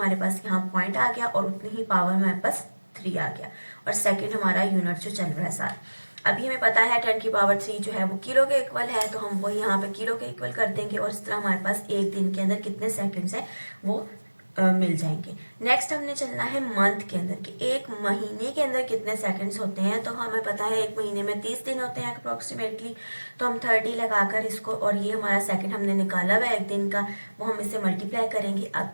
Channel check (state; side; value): inverted; both; correlation -1.00